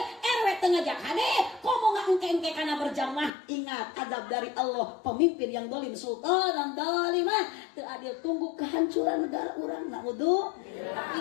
RW teu ngajak hade, komo ngaengke-engke kana berjamaah. Ingat adab dari Allah, pemimpin yang dolim sultan dolimah teu adil tunggu kehancuran negara urang. Naudzu.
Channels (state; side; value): drops out; right; at 3.3 s